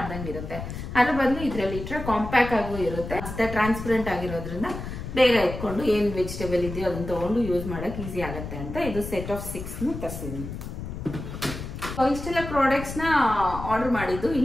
ಇರುತ್ತೆ. ಅದ್ರ ಬದಲು ಇದ್ರಲ್ಲಿ ಇಟ್ರೆ ಕಾಂಪ್ಯಾಕ್ಟ್ ಆಗೂ ಇರುತ್ತೆ, ಮತ್ತೆ ಟ್ರಾನ್ಸ್ಪರೆಂಟ್ ಆಗಿರೋದ್ರಿಂದ ಬೇಗ ಎತ್ಕೊಂಡು ಏನ್ ವೆಜಿಟೇಬಲ್ ಇದೆಯೋ ಅದನ್ನ ತಗೊಂಡು ಯೂಸ್ ಮಾಡಕ್ ಈಸಿ ಆಗುತ್ತೆ ಅಂತ ಇದು ಸೆಟ್ ಆಫ್ 6 ತರಿಸಿದೀನಿ. ಇಷ್ಟೆಲ್ಲ ಪ್ರಾಡಕ್ಟ್ಸ್ ನ ಆರ್ಡರ್ ಮಾಡಿದ್ದು.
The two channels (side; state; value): left; noise; rumble, 8 dB below the sound